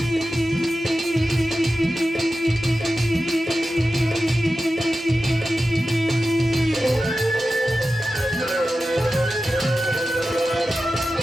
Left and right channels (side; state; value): both; normal; correlation 0.93